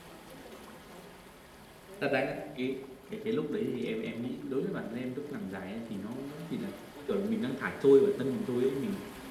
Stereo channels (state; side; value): identical; both; correlation 1.00